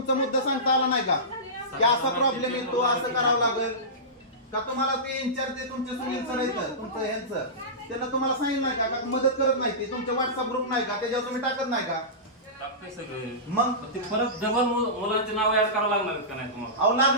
मुद्दा सांगता आला नाही का की असा प्रॉब्लेम येतो, असं करावं लागेल का? तुम्हाला ते इन्चार्ज तुमचे सुनील सर येतं तुमचं ह्यांचं, त्यांना तुम्हाला सांगितलं नाही का? का मदत करत नाही ते? तुमचे व्हॉट्सअप ग्रुप नाही का, त्याच्यावर तुम्ही टाकत नाही का? टाकते सगळे. मग ते परत डबल मुलांचे नाव ऍड करावं लागणार आहेत का नाही तुम्हाला? अहो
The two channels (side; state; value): both; normal; correlation -0.19